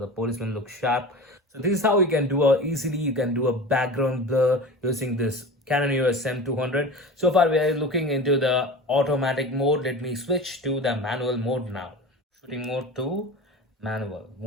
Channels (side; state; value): both; normal; correlation 0.32